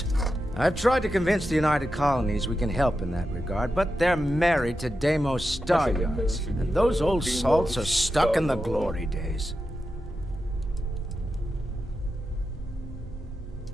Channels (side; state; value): both; normal; correlation 0.89